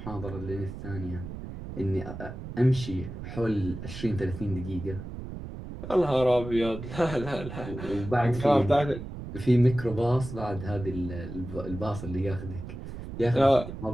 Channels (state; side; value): noise; right; rumble, 10 dB below the sound